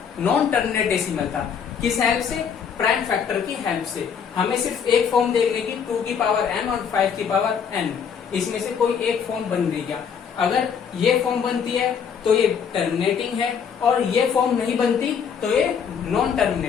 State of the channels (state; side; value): quieter; right; 7.1 dB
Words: नॉन टर्मिनेट डेसिमल था। किस हेल्प से, प्राइम फैक्टर की हेल्प से। हमें सिर्फ एक फॉर्म देखने की 2 की पावर m और 5 की पावर n, इसमें से कोई एक फॉर्म बन रही क्या। अगर ये फॉर्म बनती है तो ये टर्मिनेटिंग है, और ये फॉर्म नहीं बनती तो ये नॉन